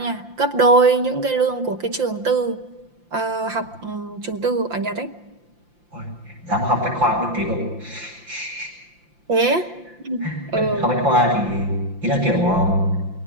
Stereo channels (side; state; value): left; late; 5.8 ms